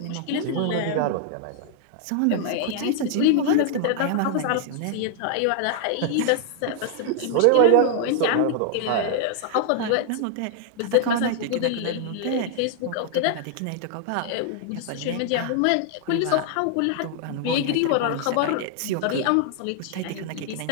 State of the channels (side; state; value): both; different; correlation 0.00